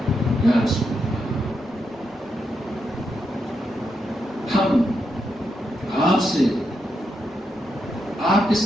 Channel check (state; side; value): normal; both; correlation 0.83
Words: یا رسول ہم آپ سے، آپ کے